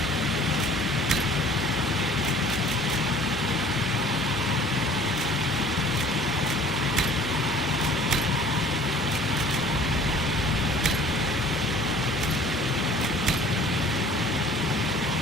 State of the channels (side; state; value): both; normal; correlation 0.50